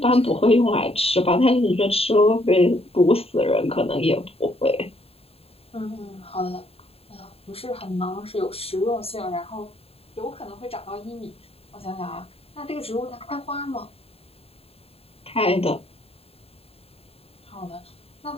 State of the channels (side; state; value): right; late; 0.28 ms